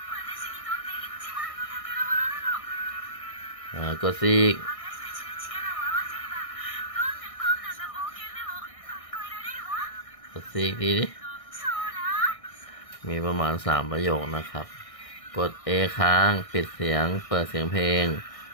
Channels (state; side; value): late; right; 1.6 ms